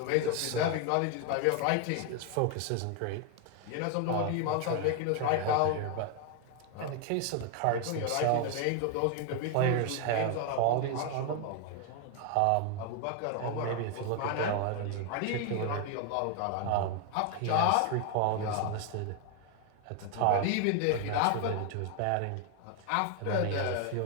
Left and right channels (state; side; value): different; both; correlation 0.01